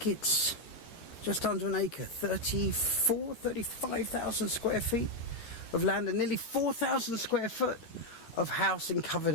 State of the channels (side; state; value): right; late; 13 ms